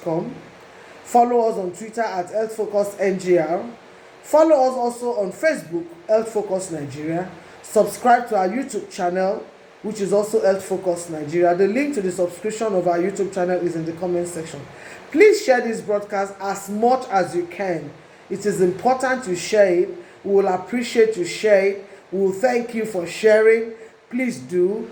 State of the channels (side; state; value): both; identical; correlation 1.00